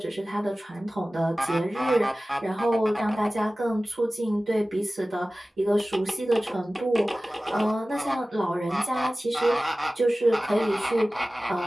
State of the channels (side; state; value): both; normal; correlation 0.97